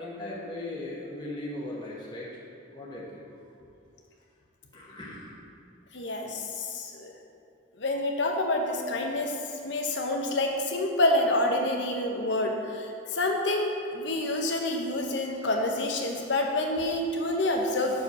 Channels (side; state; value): both; normal; correlation -0.06